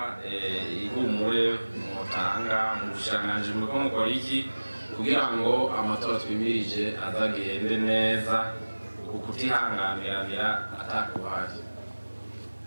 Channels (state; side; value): inverted; both; correlation -1.00